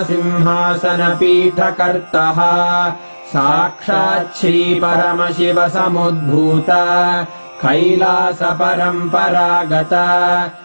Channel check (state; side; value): inverted; both; correlation -1.00